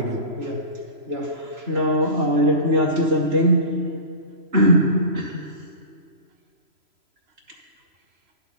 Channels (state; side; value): late; left; 3.0 ms